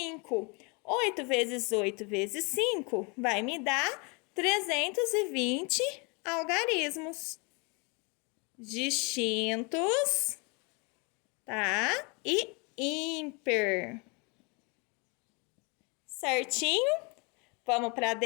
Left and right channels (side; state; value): right; quieter; 31.3 dB